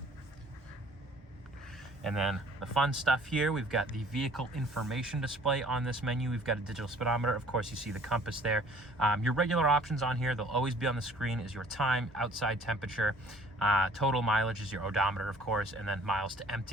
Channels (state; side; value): normal; both; correlation 0.54